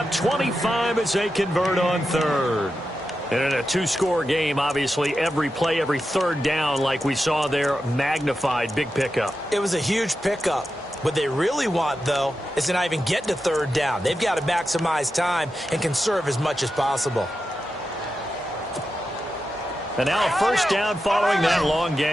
25 as they convert on third. And in a 2-score game, obviously, every play, every third down, like we saw there, magnified. Big pickup. It was a huge pickup. What they really want, though, is to not even get to third down. They've got to maximize time and conserve as much as possible. And now a first down following that long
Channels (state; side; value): normal; both; correlation 0.90